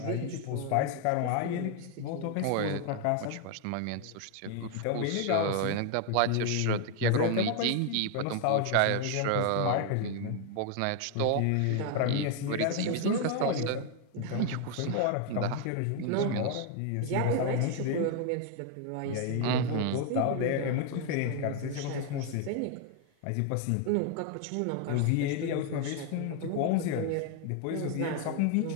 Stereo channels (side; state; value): both; different; correlation 0.00